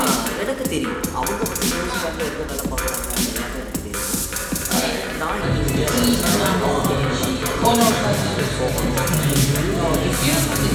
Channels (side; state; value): both; identical; correlation 1.00